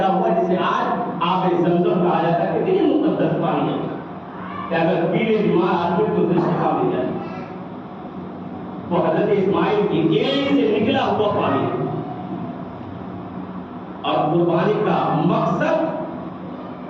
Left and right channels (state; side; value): identical; both; correlation 1.00